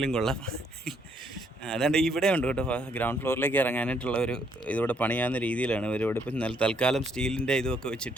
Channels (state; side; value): normal; both; correlation 0.70